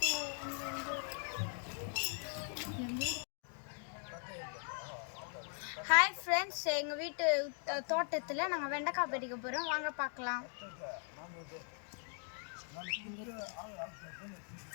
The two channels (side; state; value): right; silent; 51 dB below the other